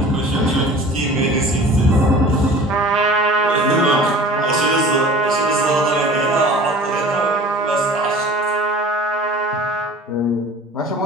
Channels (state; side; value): normal; both; correlation 0.43